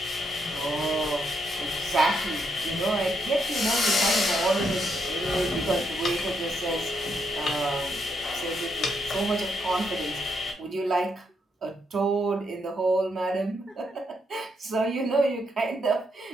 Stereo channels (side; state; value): both; normal; correlation 0.77